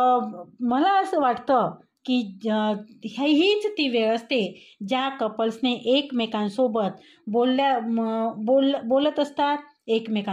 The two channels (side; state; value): both; identical; correlation 1.00